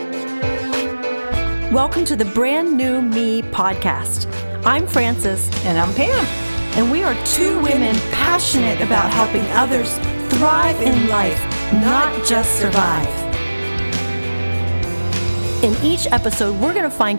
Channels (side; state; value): both; inverted; correlation -1.00